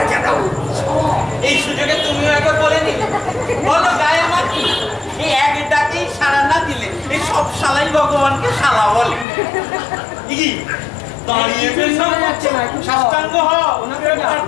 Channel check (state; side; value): drops out; right; at 9.2 s